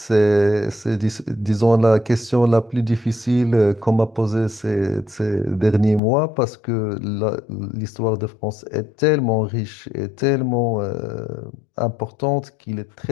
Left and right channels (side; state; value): right; drops out; at 6.0 s